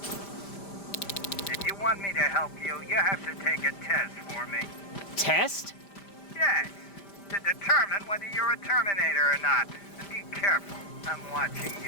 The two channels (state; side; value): late; right; 5.0 ms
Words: If you want me to help you, you have to take a test for me. Test? Yes, to determine whether you're a Terminator or not. And be careful, I'm watching